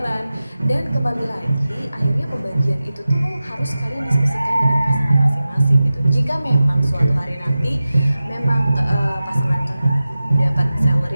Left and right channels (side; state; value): both; inverted; correlation -0.95